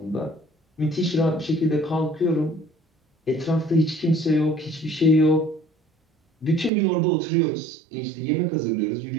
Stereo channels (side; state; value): left; drops out; at 6.7 s